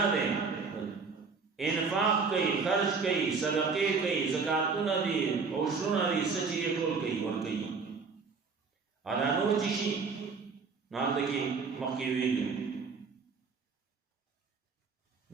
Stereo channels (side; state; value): left; quieter; 4.9 dB